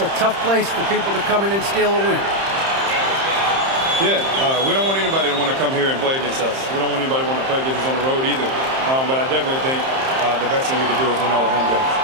tough place for people to come in and steal a win. Yeah, we don't want anybody to want to come here and play against us. We don't want anybody to want to play against us on the road either. But I definitely think the best thing we can do is win all the home games.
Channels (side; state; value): left; late; 30 ms